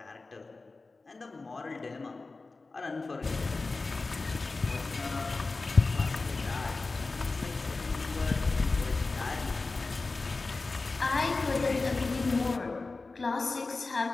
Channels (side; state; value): right; quieter; 3.7 dB